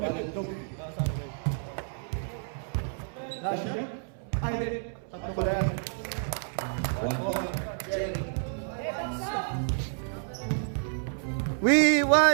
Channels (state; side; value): silent; left; 58 dB below the other